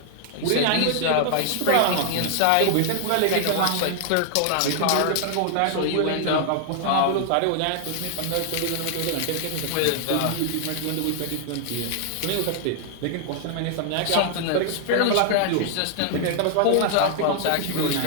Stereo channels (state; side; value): different; both; correlation 0.00